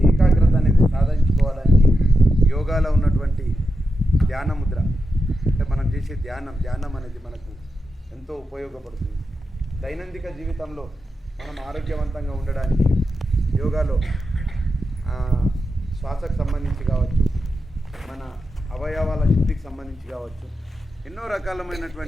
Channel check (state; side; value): normal; both; correlation 0.88